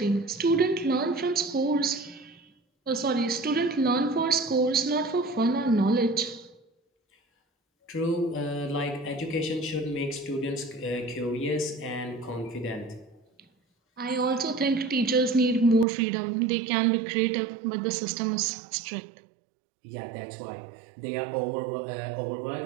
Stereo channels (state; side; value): drops out; left; at 15.9 s